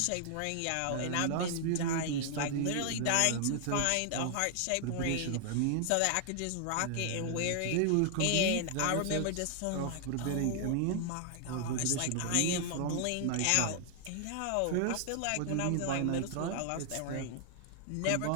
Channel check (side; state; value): both; different; correlation 0.00